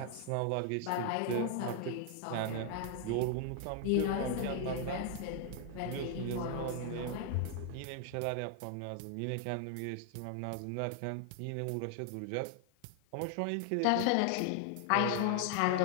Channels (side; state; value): both; different; correlation 0.00